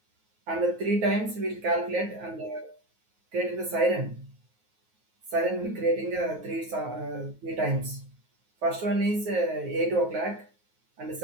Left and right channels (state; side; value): late; left; 9.4 ms